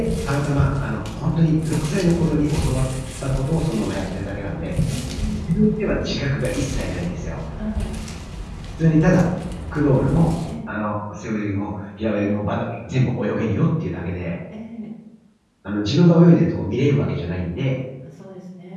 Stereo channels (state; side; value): identical; both; correlation 1.00